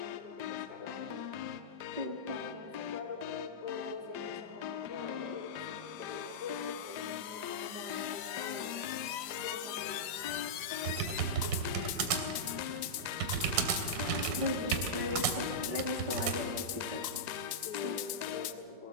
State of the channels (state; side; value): late; left; 4.9 ms